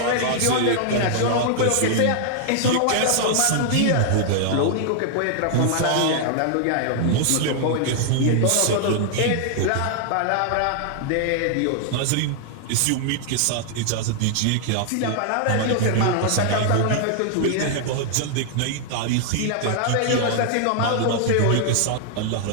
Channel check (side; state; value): both; different; correlation 0.00